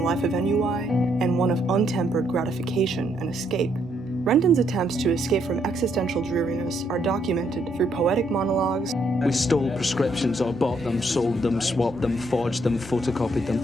life of ennui and one of untempered gratification and escape. Renton's attempts to escape from existential dreariness are documented through poetic monologues. We stole prescriptions or bought them, sold them, swapped them, forged them, photocopied them.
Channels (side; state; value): both; normal; correlation 0.73